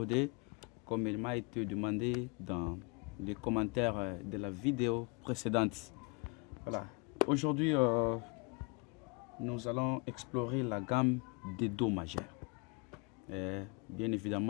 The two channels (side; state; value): right; quieter; 31.1 dB